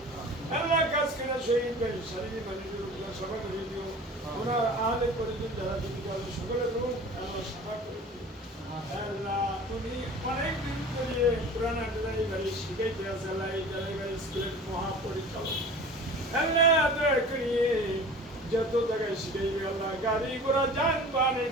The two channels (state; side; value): normal; both; correlation 0.40